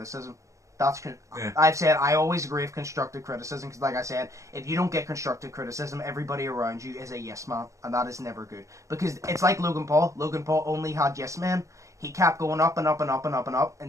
I've said I always agree with constructive criticism because, like I said, if you don't get constructive criticism, everybody around you is a yes man, and that is never good. Because it's like Logan Paul. Logan Paul only had yes men. He kept going up and up and up and up and up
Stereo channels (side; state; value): left; late; 0.15 ms